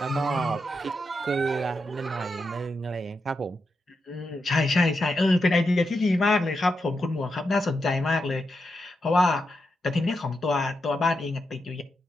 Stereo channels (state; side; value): normal; both; correlation 0.86